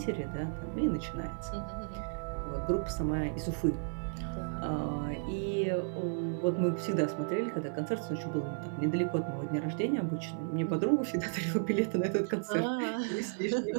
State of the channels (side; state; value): left; silent; digital silence